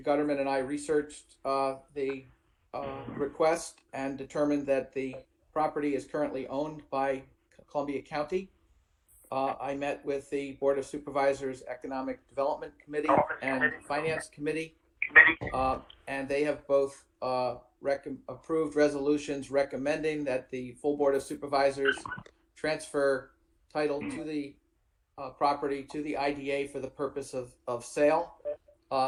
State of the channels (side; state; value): both; identical; correlation 1.00